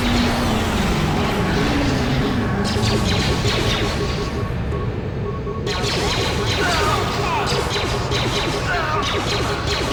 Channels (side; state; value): both; identical; correlation 1.00